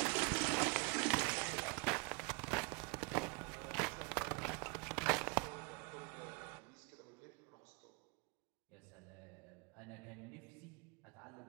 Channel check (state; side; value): quieter; left; 31.8 dB